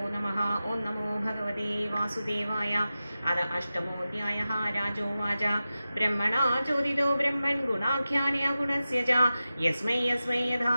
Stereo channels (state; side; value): inverted; both; correlation -0.94